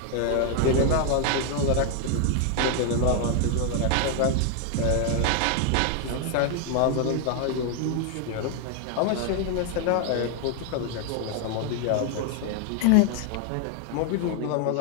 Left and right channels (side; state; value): both; different; correlation 0.00